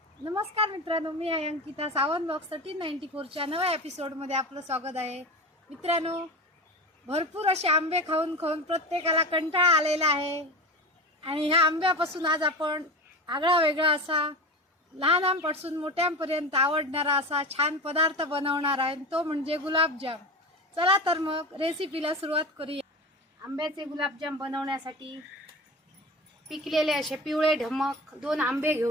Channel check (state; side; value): normal; both; correlation 0.28